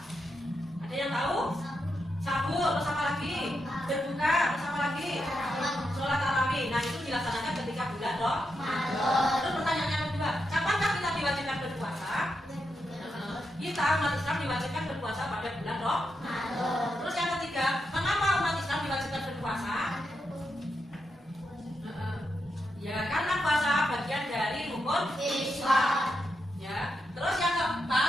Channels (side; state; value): both; normal; correlation 0.85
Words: Ada yang tahu? Sahur, terus apa lagi? Berbuka, terus apa lagi? Sholat tarawih. Nah, itu dilaksanakan ketika bulan Ramadan. Terus pertanyaan yang kedua, kapankah kita diwajibkan berpuasa? Kita umat Islam diwajibkan berpuasa pada bulan Ramadan. Terus yang ketiga, mengapa umat Islam diwajibkan berpuasa? Ya, karena puasa bagian dari rukun Islam. Ya. Terus yang